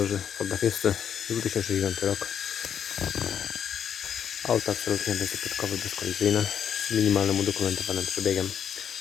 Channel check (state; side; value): quieter; right; 8.5 dB